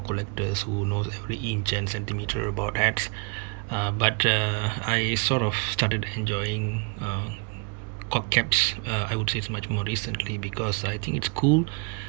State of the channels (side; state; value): left; quieter; 32.9 dB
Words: collectors who knows every inch and centimeter about hats. But I sort of started enjoying cock caps. I would say it's much more recently because I think it's cool.